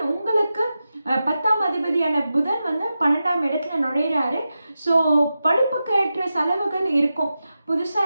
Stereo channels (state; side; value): inverted; both; correlation -0.91